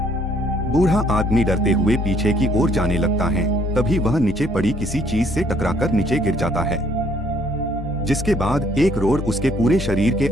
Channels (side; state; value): both; normal; correlation 0.64